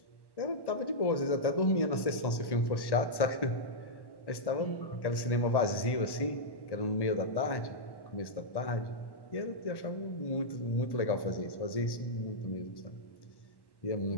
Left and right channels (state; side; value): late; right; 1.1 ms